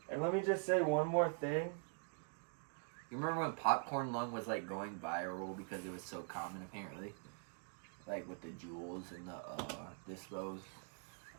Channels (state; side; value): quieter; left; 39.5 dB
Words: And let me just say one more thing. You remember when popcorn lung was like going viral because it was so common apparently? Like with the jewels and the dispos.